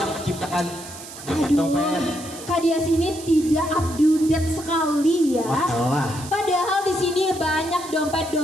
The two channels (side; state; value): right; noise; hiss, 14 dB below the sound